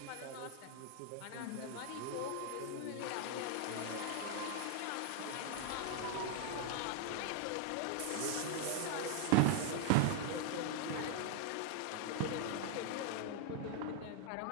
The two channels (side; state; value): both; different; correlation 0.00